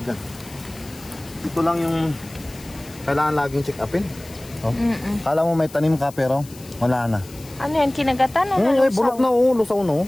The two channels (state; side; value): noise; left; hiss, 20 dB below the sound